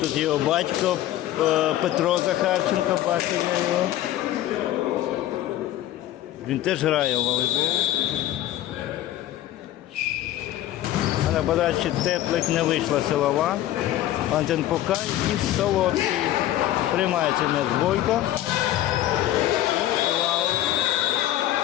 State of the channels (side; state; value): right; quieter; 13.7 dB